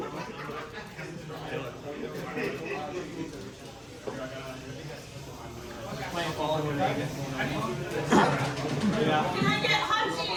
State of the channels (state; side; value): identical; both; correlation 1.00